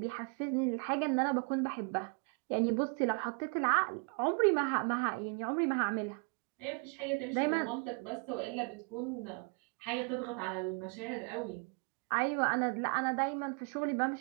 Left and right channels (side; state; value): left; quieter; 35.0 dB